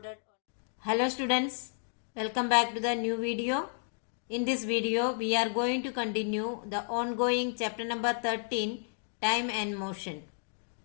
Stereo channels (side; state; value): right; silent; 57 dB below the other